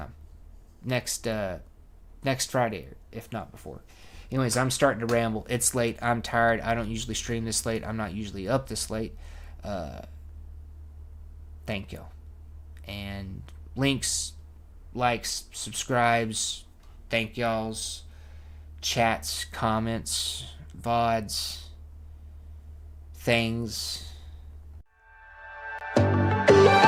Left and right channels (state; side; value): identical; both; correlation 1.00